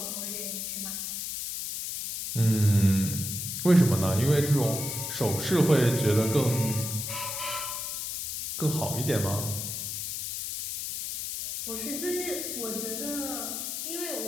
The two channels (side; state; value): left; noise; hiss, 4 dB below the sound